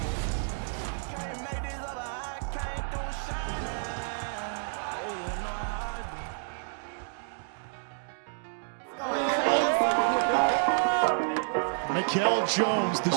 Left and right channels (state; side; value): silent; left; digital silence